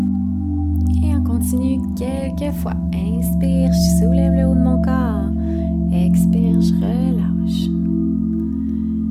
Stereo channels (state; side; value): identical; both; correlation 1.00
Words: continue quelques fois. Inspire, je soulève le haut de mon corps. Expire, je relâche.